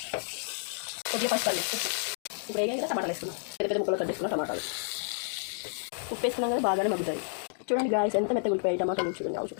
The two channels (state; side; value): silent; right; digital silence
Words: కొద్దిగా పచ్చిపల్లి. ఇప్పుడు వేయగా కదా టమాటాలు వేసుకున్నాం, పెద్ద ముక్కలు కట్ చేసుకున్నాం. టమాటాలు ఉప్పు వేసుకున్నాం కదా బాగానే మగ్గుతాయి. చూడండి గాయస్ ఎంత మెత్తగా ఉల్లిపాయ టమాటాలు. చూడండి అవి